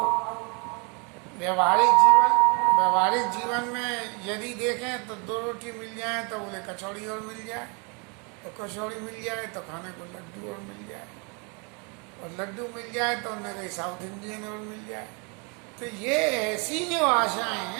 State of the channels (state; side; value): quieter; left; 33.5 dB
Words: व्यवहारिक जीवन में यदि देखें तो 2 रोटी मिल जाए तो बोले कचौड़ी और मिल जाए, तो कचौड़ी मिल जाए तो खाने को लड्डू और मिल जाए, और लड्डू मिल जाए तो उन्हें कहीं साउथ इंडियन और मिल जाए। तो ये ऐसी जो आशाएं